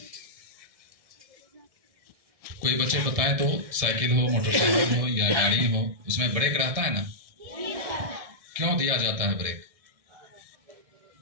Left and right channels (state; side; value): late; left; 1.6 ms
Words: कोई बच्चे बताएं तो साइकिल हो, मोटरसाइकिल हो या गाड़ी हो, उसमें ब्रेक रहता है ना? क्यों दिया जाता है ब्रेक?